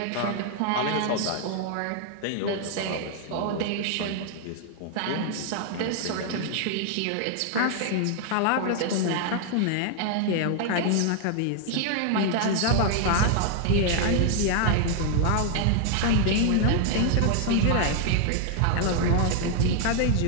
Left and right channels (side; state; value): both; different; correlation 0.00